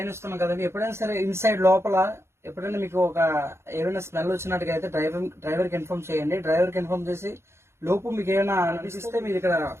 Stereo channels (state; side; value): late; left; 0.13 ms